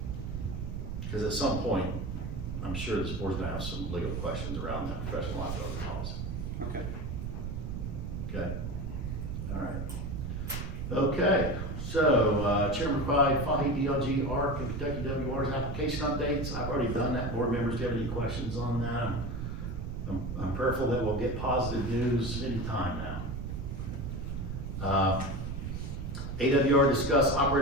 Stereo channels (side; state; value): right; noise; rumble, 4 dB below the sound